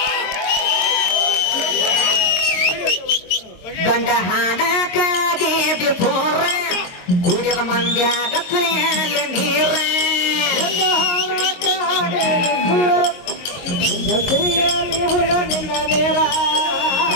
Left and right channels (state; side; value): late; right; 22 ms